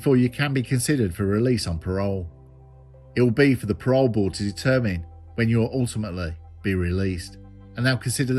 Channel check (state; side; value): identical; both; correlation 1.00